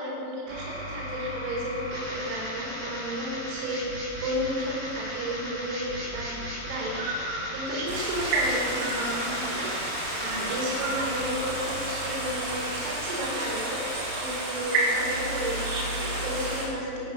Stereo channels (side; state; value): left; late; 29 ms